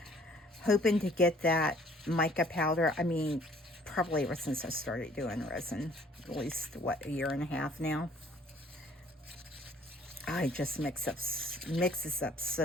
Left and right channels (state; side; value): normal; both; correlation 0.58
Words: hoping to get that mica powder, I mean, probably ever since I started doing resin, at least, what, a year and a half now. I just mixes up